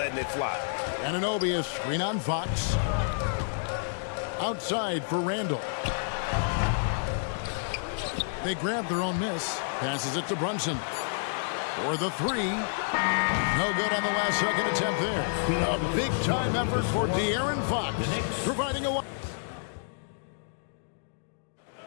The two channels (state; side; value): silent; right; digital silence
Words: it fly. Anunoby is screen on Fox. Outside for Randall. They grab their own miss. Passes it to Brunson. For the three. No good on the last second attempt there. A big-time effort for De'Aaron Fox. Providing a...